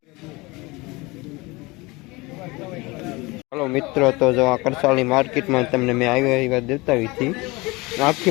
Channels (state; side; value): quieter; right; 23.9 dB